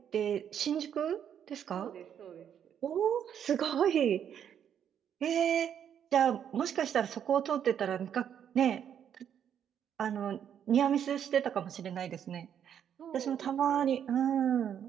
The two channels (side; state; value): left; quieter; 8.9 dB